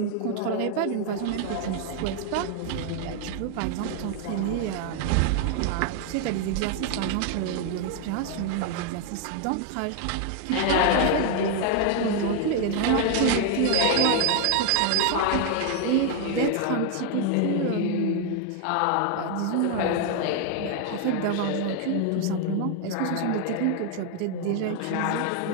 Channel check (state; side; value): different; both; correlation 0.00